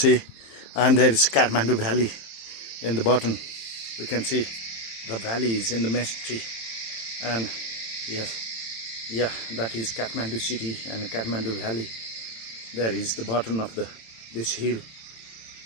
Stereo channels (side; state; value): right; late; 27 ms